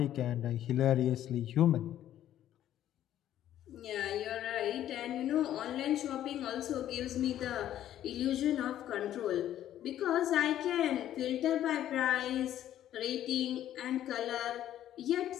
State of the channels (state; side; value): quieter; right; 11.9 dB